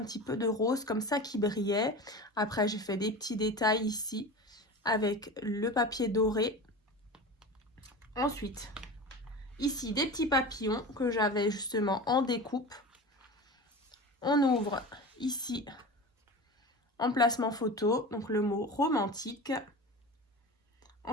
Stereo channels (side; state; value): both; normal; correlation 0.31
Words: petit peu de rose comme ça qui brillait. Après, j'ai fait des petits détails ici avec le papier doré. Ensuite, ici, des petits papillons que j'avais justement en découpe. On ouvre ici, emplacement photo, donc le mot romantique.